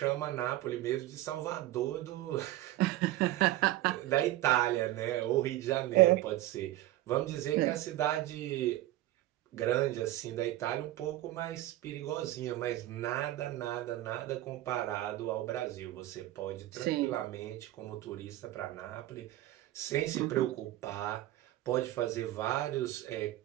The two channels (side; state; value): left; quieter; 15.4 dB